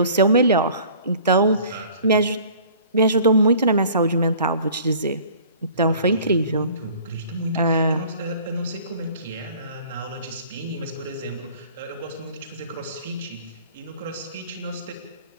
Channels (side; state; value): both; inverted; correlation -0.49